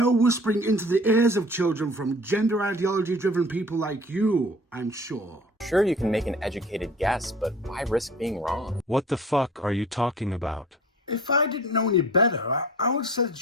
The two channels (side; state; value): both; normal; correlation 0.45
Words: whispering into the ears of children from gender ideology-driven people like you, I'm sure. Sure, you can make an educated guess, but why risk being wrong? What the fuck are you talking about? If I didn't know any better, I would say